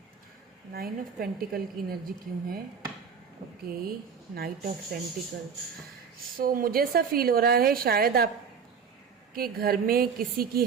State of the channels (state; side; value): quieter; left; 6.4 dB